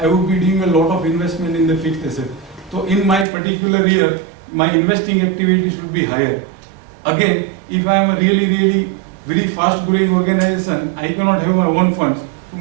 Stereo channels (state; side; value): drops out; left; at 3.2 s